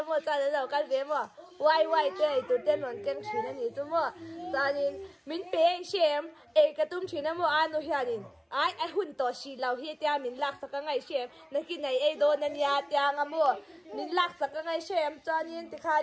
mà cho nên lâu cái về mà quay đây tụi tên luôn cái chỉ là này chú mà cho nên mình bé xem cái tụi chỉ là mà ăn luôn hiện ai hun to si lau hi tia min lak saka ngai shem na ki nei ei do na nia tia nga mo min lak saka ngai shem chanin ti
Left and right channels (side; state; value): both; identical; correlation 1.00